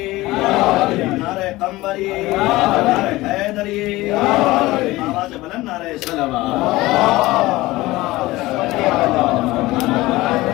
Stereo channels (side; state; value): right; quieter; 18.9 dB